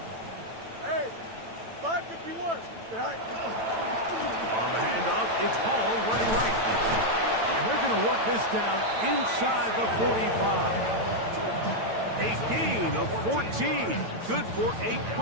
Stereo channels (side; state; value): left; late; 9.0 ms